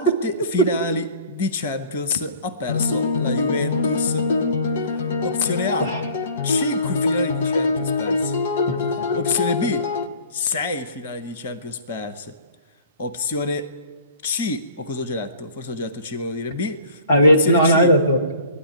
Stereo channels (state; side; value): inverted; both; correlation -0.49